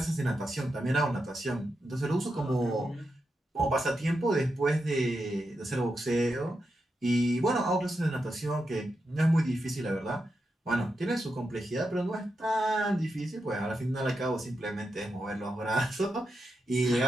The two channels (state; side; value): normal; both; correlation 0.86